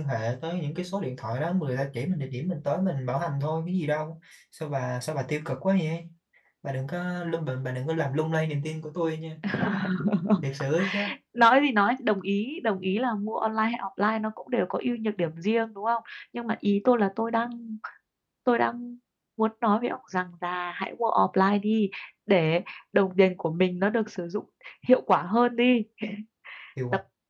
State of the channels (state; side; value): identical; both; correlation 1.00